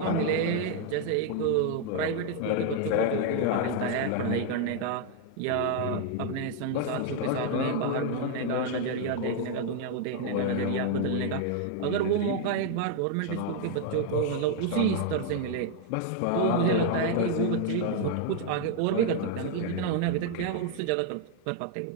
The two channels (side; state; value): both; different; correlation 0.00